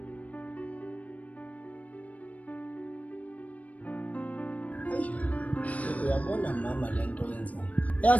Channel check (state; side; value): late; right; 0.069 ms